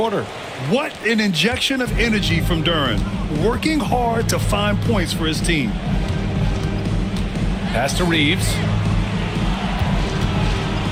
What an injection of energy from Duren. Working hard to find points for his team. Pass to Reeves.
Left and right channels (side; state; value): both; identical; correlation 1.00